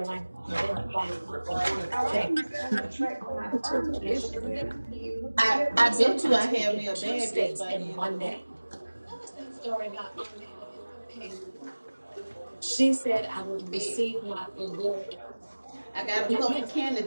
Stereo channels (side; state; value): both; inverted; correlation -1.00